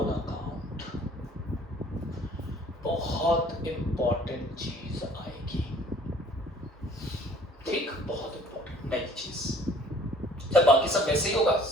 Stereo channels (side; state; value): both; normal; correlation 0.53